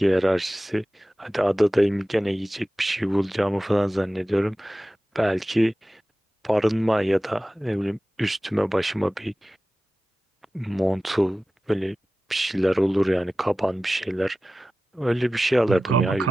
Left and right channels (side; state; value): both; normal; correlation 0.96